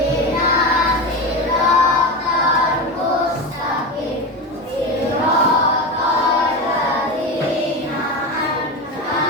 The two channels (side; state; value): both; normal; correlation 0.21